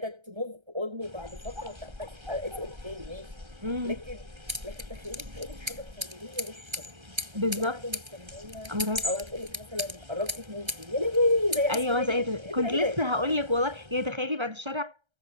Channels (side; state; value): left; late; 1.3 ms